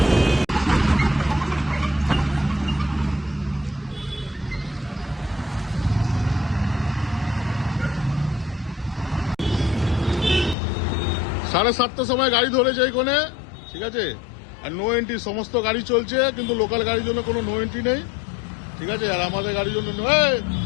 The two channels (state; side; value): drops out; right; at 10.6 s